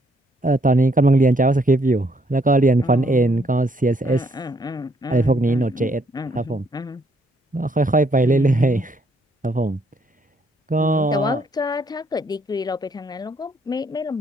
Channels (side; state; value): both; normal; correlation 0.70